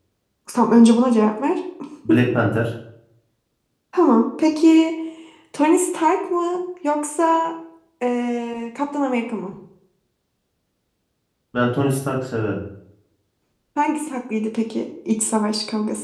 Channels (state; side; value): identical; both; correlation 1.00